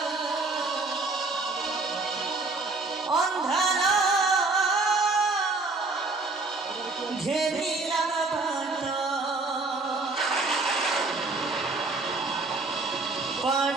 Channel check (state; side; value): quieter; left; 3.6 dB